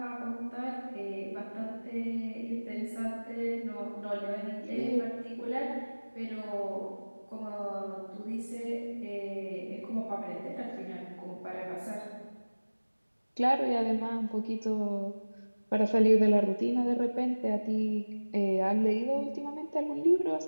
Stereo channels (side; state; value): both; inverted; correlation -1.00